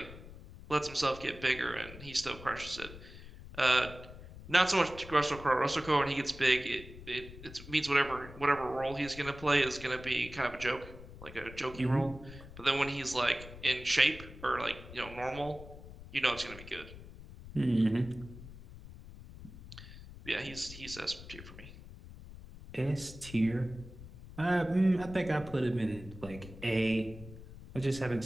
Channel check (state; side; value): noise; left; rumble, 15 dB below the sound